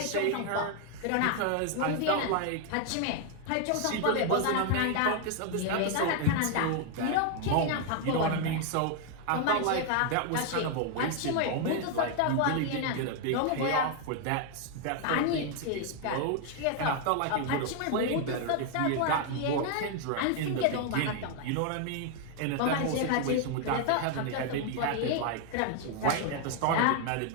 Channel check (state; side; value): different; both; correlation 0.00